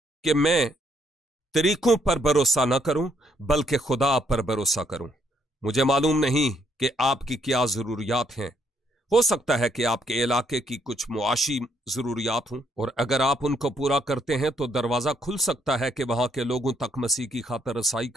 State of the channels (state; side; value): normal; both; correlation 0.71